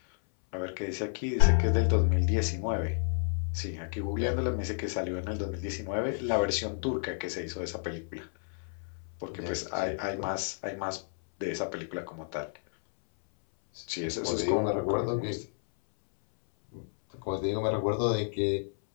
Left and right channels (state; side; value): silent; right; 57 dB below the other